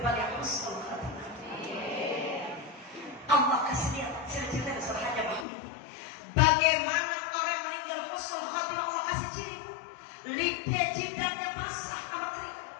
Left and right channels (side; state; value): right; drops out; at 5.5 s